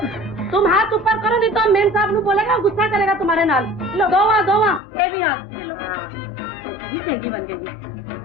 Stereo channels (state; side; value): drops out; right; at 4.8 s